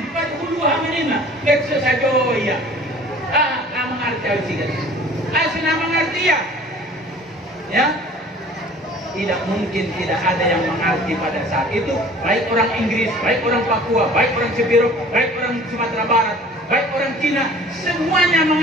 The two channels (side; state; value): both; normal; correlation 0.48